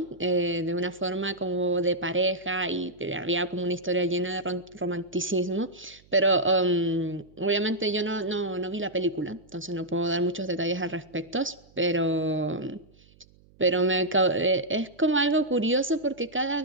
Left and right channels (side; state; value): right; noise; hum, 29 dB below the sound